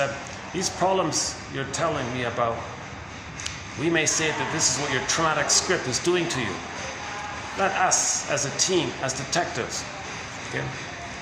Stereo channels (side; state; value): both; identical; correlation 1.00